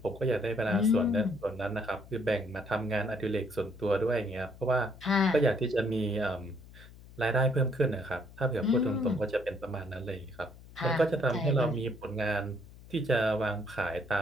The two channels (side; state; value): left; noise; hum, 19 dB below the sound